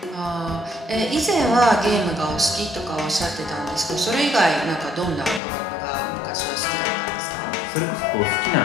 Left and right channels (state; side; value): drops out; right; at 5.4 s